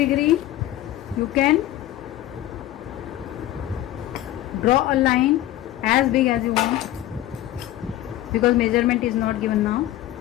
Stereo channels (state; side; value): quieter; right; 14.2 dB